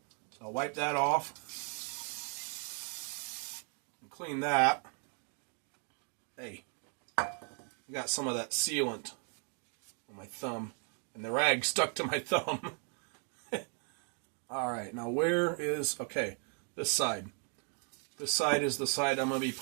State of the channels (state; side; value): quieter; left; 39.0 dB